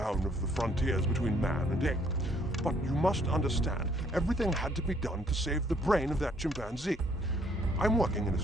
of the frontiers between man and ape. But you must understand, everything had to be done to save the brain of that chimpanzee. I'm working in a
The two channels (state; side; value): normal; both; correlation 0.65